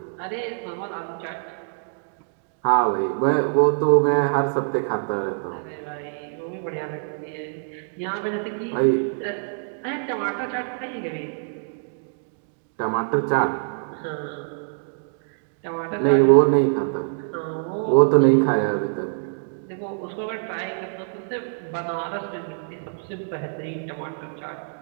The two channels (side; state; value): left; silent; digital silence